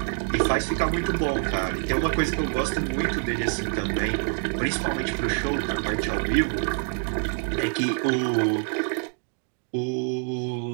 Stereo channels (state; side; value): silent; left; 55 dB below the other